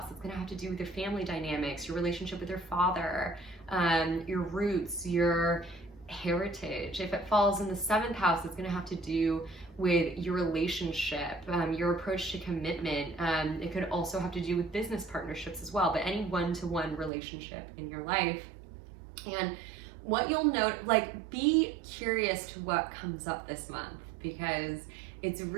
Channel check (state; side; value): drops out; left; at 17.1 s